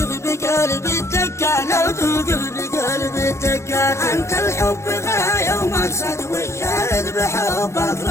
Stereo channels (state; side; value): late; right; 0.13 ms